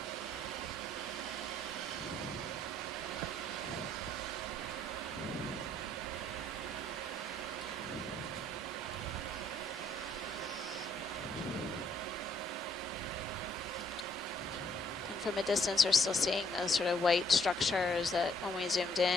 from a distance, we're still seeing those sort of white structures that, when we zoomed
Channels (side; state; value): both; normal; correlation 0.67